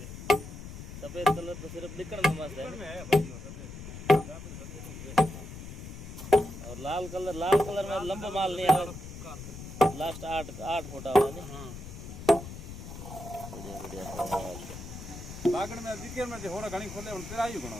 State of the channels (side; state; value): left; noise; rumble, 11 dB below the sound